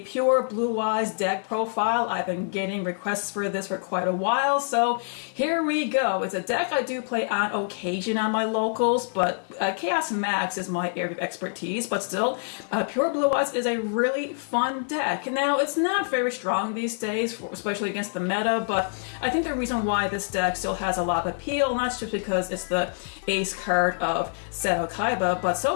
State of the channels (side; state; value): right; silent; digital silence